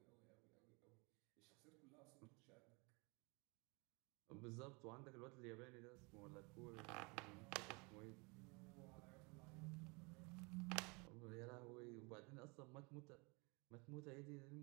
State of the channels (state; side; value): quieter; left; 29.3 dB